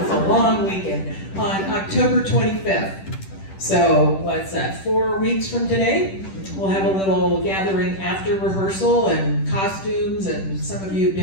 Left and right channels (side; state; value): right; late; 10 ms